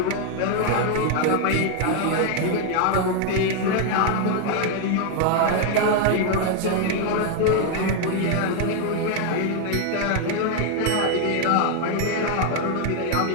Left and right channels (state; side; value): different; both; correlation 0.00